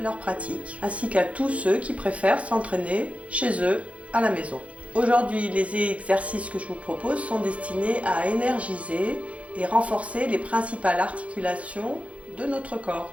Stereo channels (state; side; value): late; left; 0.064 ms